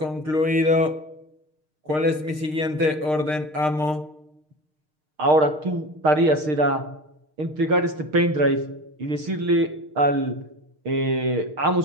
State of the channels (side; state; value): left; late; 6.5 ms